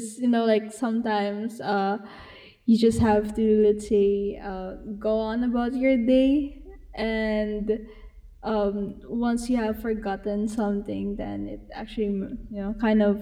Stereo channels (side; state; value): both; identical; correlation 1.00